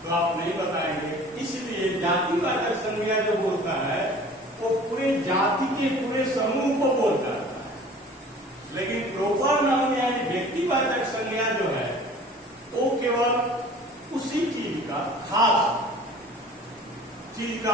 तो आप नहीं बताएंगे। इसलिए जातिवाचक संज्ञा जो बोलता है वो पूरे जाति के पूरे समूह को बोलता है। लेकिन प्रॉपर नाउन यानी व्यक्तिवाचक संज्ञा जो है वो केवल उसी चीज का, खास चीज का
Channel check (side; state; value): both; normal; correlation 0.46